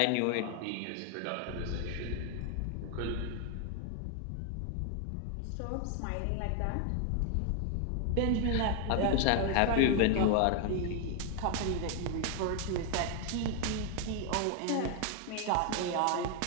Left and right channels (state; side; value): different; both; correlation 0.01